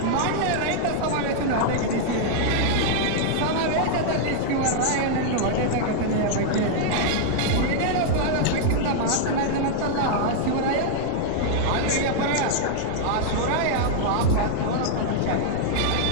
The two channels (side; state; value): both; different; correlation -0.01